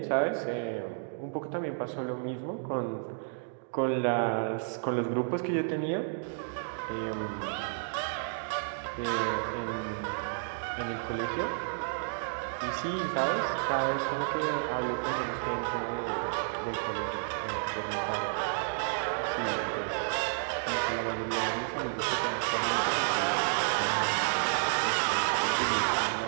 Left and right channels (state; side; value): silent; left; digital silence